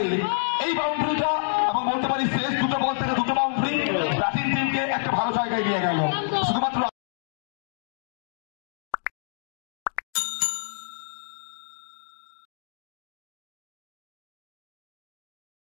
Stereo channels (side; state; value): right; silent; digital silence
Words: এই বাউন্ডারিটা এবং বলতে পারি শেষ দুটো বল থেকে দুটো বাউন্ডারি ব্যাটিং টিমকে একটা ভালো জায়গায় নিয়ে গেল। শুধুমাত্র